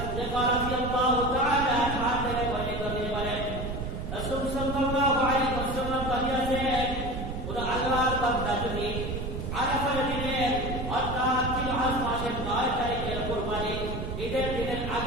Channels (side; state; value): right; noise; rumble, 5 dB below the sound